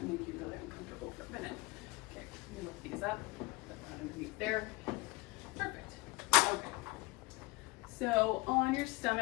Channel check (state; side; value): quieter; right; 23.6 dB